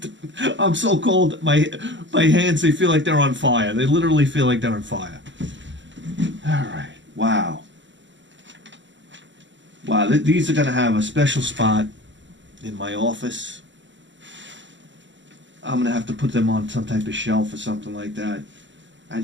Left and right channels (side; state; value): left; late; 0.54 ms